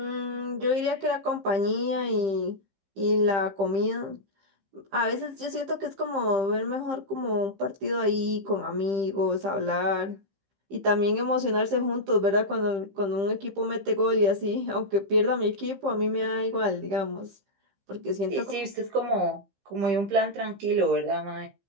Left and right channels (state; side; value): late; left; 15 ms